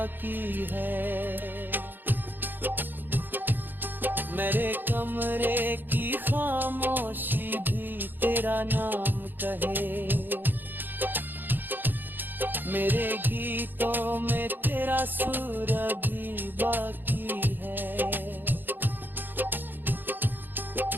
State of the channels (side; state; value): left; late; 0.093 ms